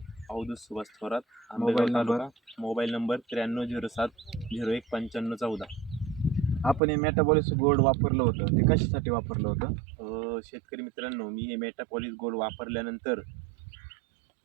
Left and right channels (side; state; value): left; drops out; at 6.8 s